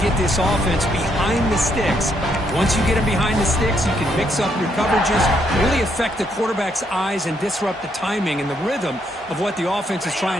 get this offense behind the sticks. Once you get them behind the sticks, you can mix up your coverages, really affect the quarterback's eyes and disrupt the timing and the rhythm of what the offense is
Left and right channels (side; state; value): both; normal; correlation 0.74